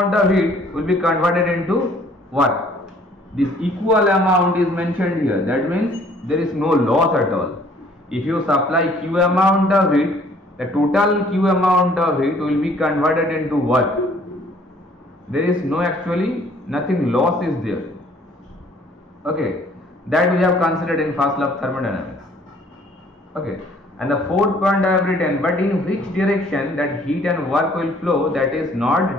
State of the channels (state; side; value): normal; both; correlation 0.58